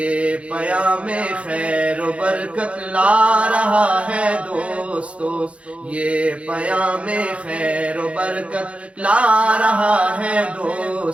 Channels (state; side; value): late; left; 0.062 ms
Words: پیام خیر و برکت لا رہا ہے دوستو، یہ پیام خیر و برکت لا رہا ہے